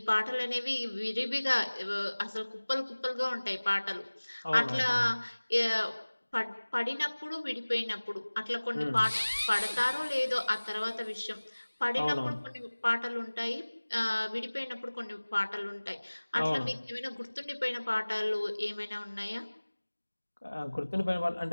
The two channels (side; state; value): both; inverted; correlation -1.00